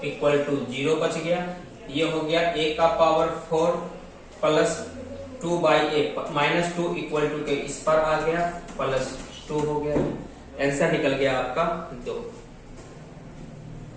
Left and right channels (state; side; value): identical; both; correlation 1.00